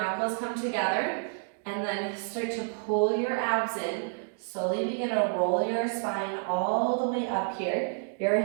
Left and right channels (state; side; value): silent; left; 58 dB below the other